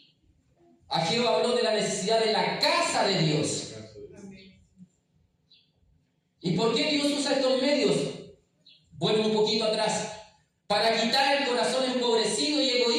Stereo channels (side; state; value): both; identical; correlation 1.00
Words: Ageo habló de la necesidad de la casa de Dios. ¿Y por qué Dios usa estos medios? Vuelvo un poquito atrás. Para quitar el corazón empobrecido y